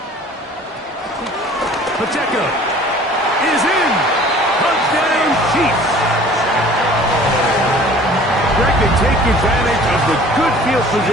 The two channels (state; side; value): normal; both; correlation 0.49